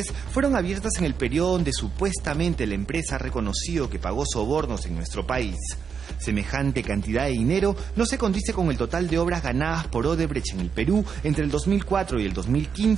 fueron abiertas en el periodo donde supuestamente la empresa ha reconocido que pagó sobornos en nuestro país. Semejante cantidad de dinero no se condice con el total de obras ganadas por Odebrecht en el Perú entre el 2004 y el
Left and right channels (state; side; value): quieter; left; 6.5 dB